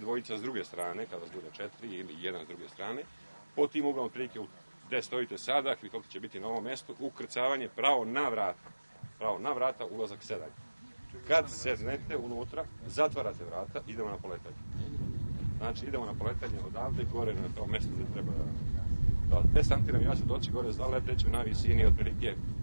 s druge strane, kada vas bude 4 ili jedan s druge strane. Po tim uglom prilike gde stojite sada, helikopter će biti na ovom mestu, ukrcavanje pravo na vrata. Pravo na vrata, ulazak sedanje. Kad sednete unutra, zatvarate vrata, idemo na poletanje. Znači, idemo na poletanje odavde, gore na to mesto gde treba da desantiram. Ja ću doći gore, zaleteću na visini otprilike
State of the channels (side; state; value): both; inverted; correlation -1.00